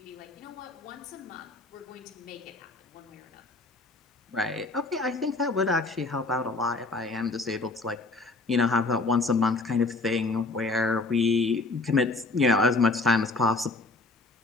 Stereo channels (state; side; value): quieter; right; 3.4 dB